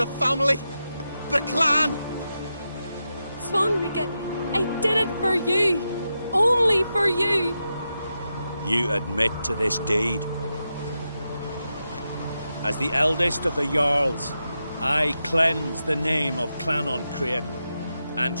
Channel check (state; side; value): inverted; both; correlation -0.88